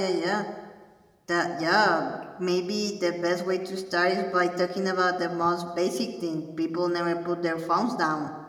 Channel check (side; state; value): both; identical; correlation 1.00